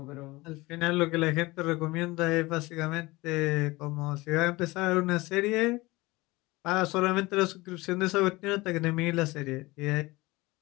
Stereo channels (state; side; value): quieter; right; 21.6 dB